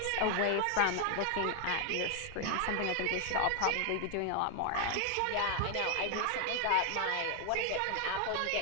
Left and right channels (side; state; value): both; different; correlation 0.01